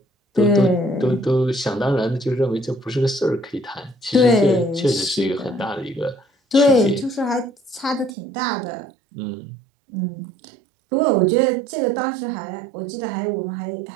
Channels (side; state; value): left; drops out; at 8.1 s